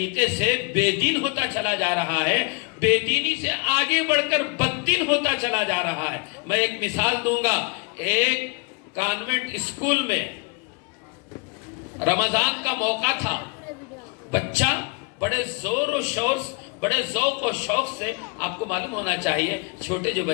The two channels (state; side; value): quieter; right; 31.3 dB